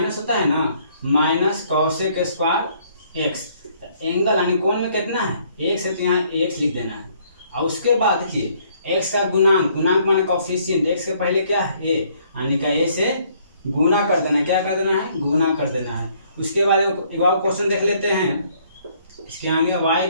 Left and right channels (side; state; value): both; inverted; correlation -0.64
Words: होता है ना, minus cosec square x. Angle यानी कोण में कितना है? x है, तो यहाँ x लिख देना है। और उसके बाद देखिए x का गुणांक, गुणांक माने कोफिशिएंट, x के पहले क्या है? a, यानी का a से गुना कर देना है। क्या कर देना है? गुना कर देना है। उसके बाद एक और क्वेश्चन देख लेते हैं। इसके आगे y